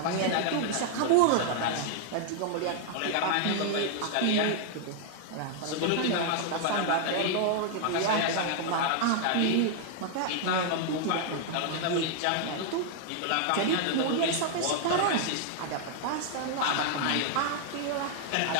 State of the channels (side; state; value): both; different; correlation 0.00